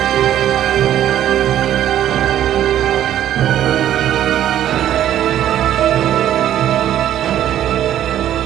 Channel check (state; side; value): quieter; left; 11.5 dB